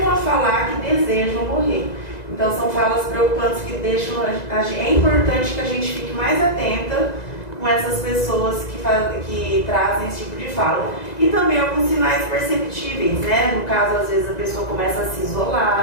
a falar que desejam morrer. Então são falas preocupantes que deixam é importante que a gente fique mais atenta com essas pessoas que trazem esse tipo de fala. E também alguns sinais perceptíveis, né? No caso, às vezes a pessoa começa a se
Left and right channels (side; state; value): right; late; 1.9 ms